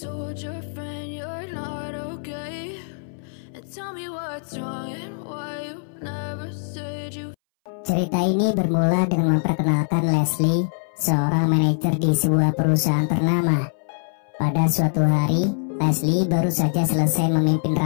your friend you're not okay, and tell me what's wrong and why you never said you. Cerita ini bermula dengan memperkenalkan Leslie, seorang manajer di sebuah perusahaan ternama. Pada suatu hari, Leslie baru saja selesai memimpin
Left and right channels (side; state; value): right; silent; 62 dB below the other